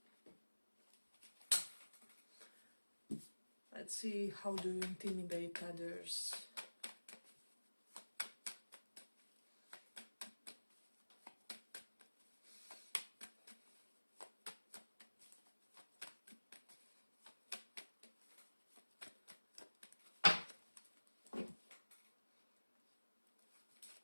let's see how do you intimidate others.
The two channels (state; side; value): inverted; both; correlation -1.00